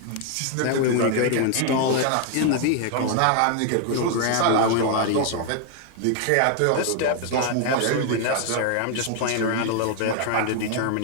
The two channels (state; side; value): different; both; correlation 0.00